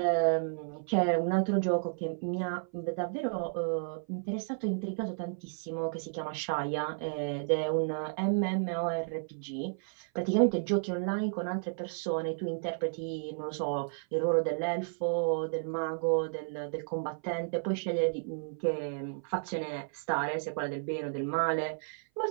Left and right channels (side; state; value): left; silent; 56 dB below the other